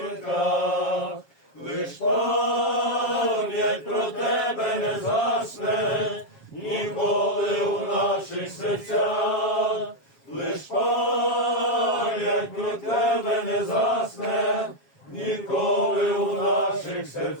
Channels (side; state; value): right; late; 7.4 ms